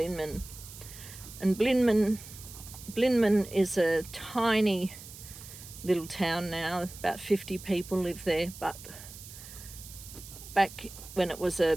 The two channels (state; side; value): noise; right; hiss, 15 dB below the sound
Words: And Blinman is a tiny little town now. About 50 people live there, but back when it was a